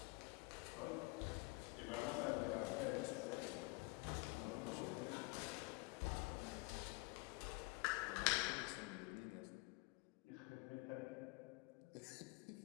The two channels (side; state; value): right; quieter; 26.0 dB